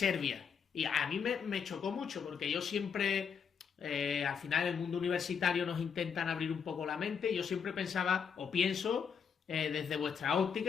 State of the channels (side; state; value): right; quieter; 6.8 dB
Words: Y a mí me chocó mucho porque yo siempre, al final en el mundo universitario nos intentan abrir un poco la mente y yo siempre pensaba o pienso desde vuestra